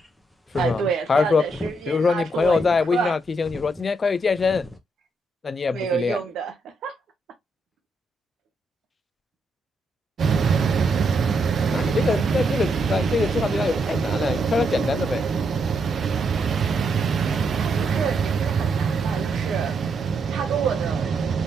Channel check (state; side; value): normal; both; correlation 0.78